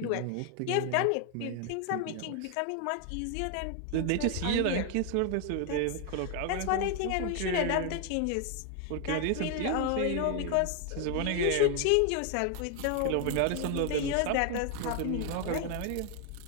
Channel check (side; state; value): both; different; correlation 0.00